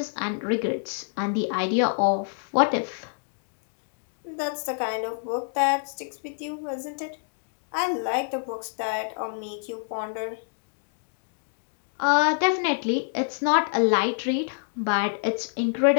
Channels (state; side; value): silent; right; digital silence